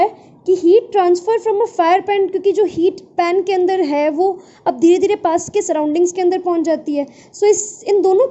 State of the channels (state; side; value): identical; both; correlation 1.00